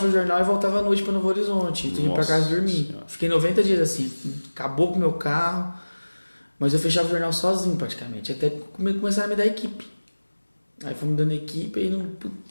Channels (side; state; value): both; inverted; correlation -1.00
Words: o jornal e voltava à noite para Novo Horizonte. Então eu ia para casa dormir. Senhora. Fiquei 90 dias assim, acabou com o meu carro, mas eu fechava o jornal sozinho praticamente, até começar a me dar equipe. Aí fomos dando equipe e não...